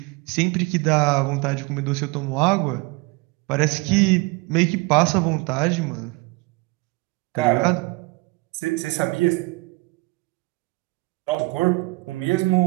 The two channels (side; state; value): left; quieter; 24.9 dB